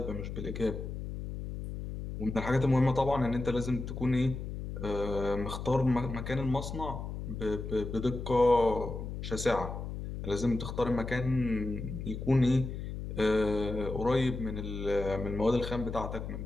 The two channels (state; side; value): noise; left; hum, 7 dB below the sound